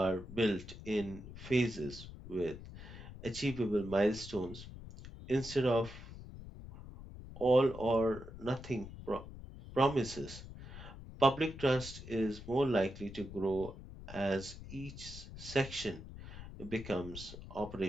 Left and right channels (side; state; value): left; noise; rumble, 13 dB below the sound